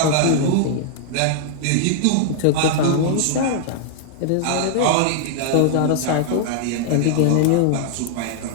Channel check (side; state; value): both; different; correlation -0.01